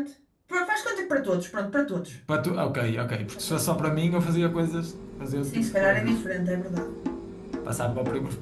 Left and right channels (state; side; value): identical; both; correlation 1.00